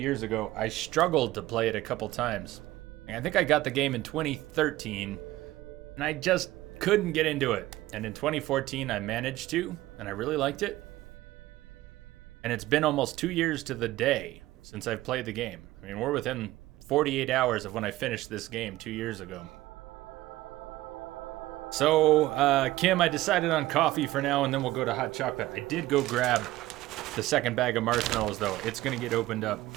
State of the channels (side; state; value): left; quieter; 16.8 dB